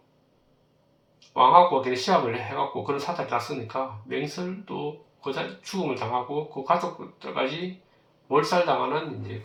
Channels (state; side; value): identical; both; correlation 1.00